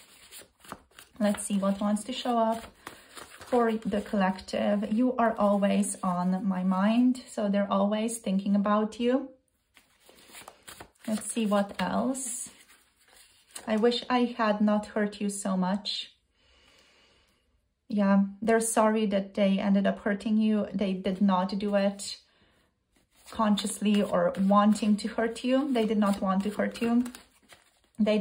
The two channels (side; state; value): both; identical; correlation 1.00